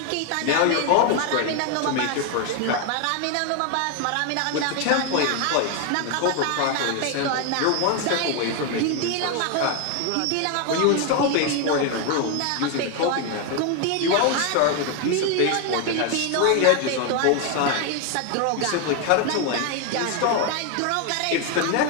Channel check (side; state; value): both; different; correlation 0.01